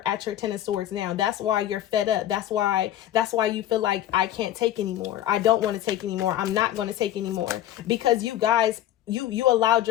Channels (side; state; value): right; quieter; 12.3 dB